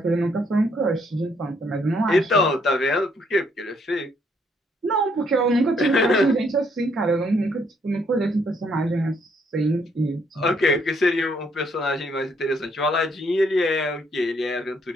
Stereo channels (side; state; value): both; normal; correlation 0.70